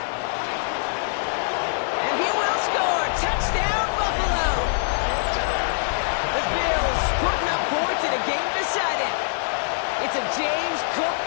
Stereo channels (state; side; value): silent; right; 63 dB below the other